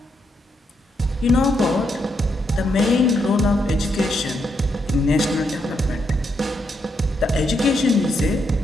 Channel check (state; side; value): normal; both; correlation 0.79